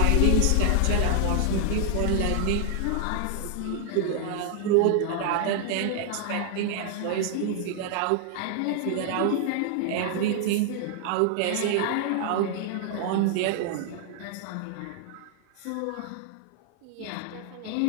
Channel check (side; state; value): both; different; correlation -0.01